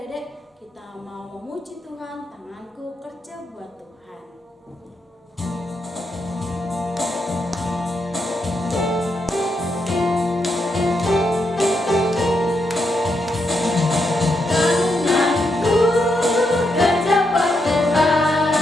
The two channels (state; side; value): normal; both; correlation 0.81